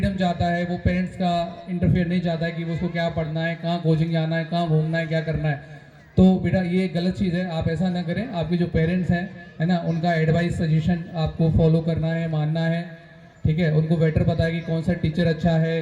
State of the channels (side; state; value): both; identical; correlation 1.00